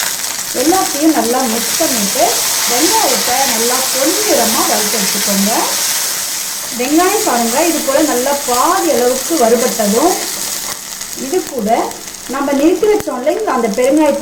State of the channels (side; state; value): both; identical; correlation 1.00